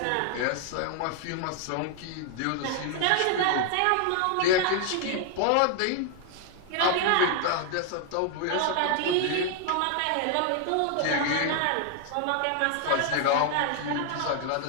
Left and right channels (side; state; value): both; different; correlation 0.00